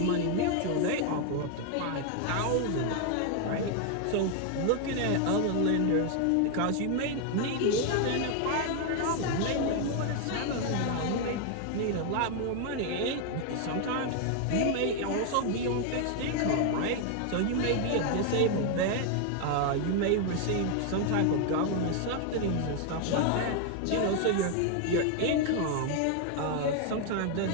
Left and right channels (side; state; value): both; different; correlation 0.00